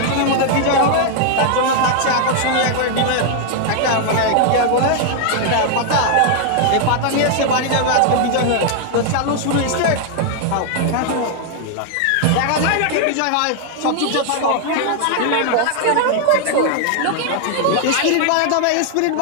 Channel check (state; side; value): different; both; correlation 0.00